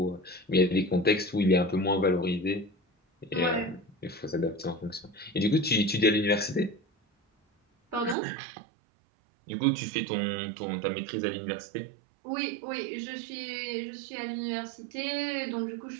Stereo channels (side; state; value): left; drops out; at 8.2 s